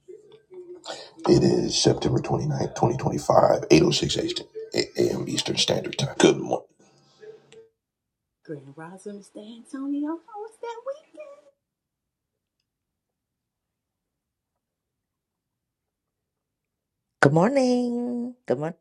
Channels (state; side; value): identical; both; correlation 1.00